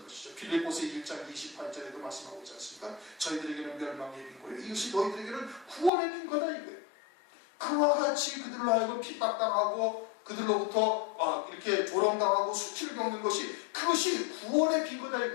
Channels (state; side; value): drops out; right; at 5.9 s